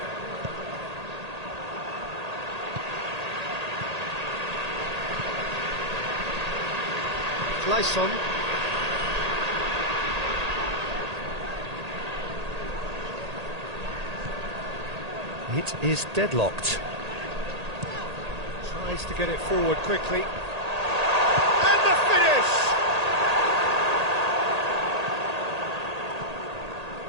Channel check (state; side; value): late; left; 1.8 ms